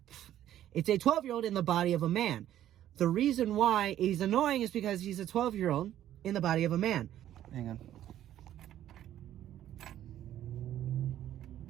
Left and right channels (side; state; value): left; quieter; 12.0 dB